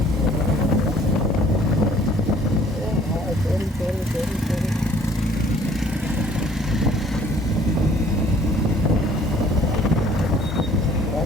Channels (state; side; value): normal; both; correlation 0.57